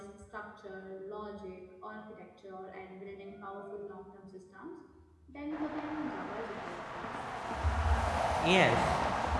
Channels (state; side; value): identical; both; correlation 1.00